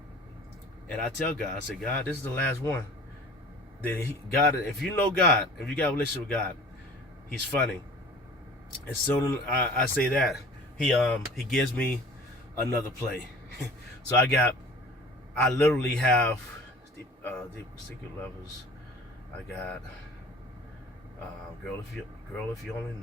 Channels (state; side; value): normal; both; correlation 0.44